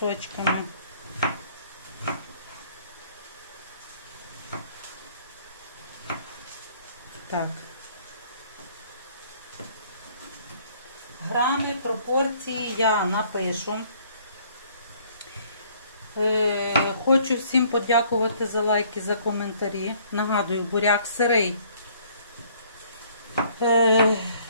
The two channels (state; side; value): inverted; both; correlation -0.60